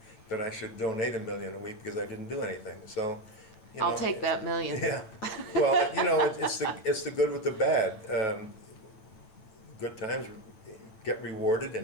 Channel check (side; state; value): right; late; 9.1 ms